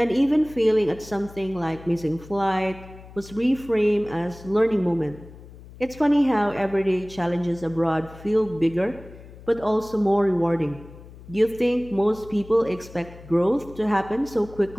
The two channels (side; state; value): left; noise; hum, 18 dB below the sound